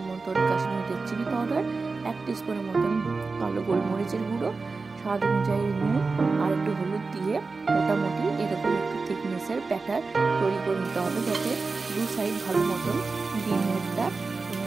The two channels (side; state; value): left; quieter; 4.1 dB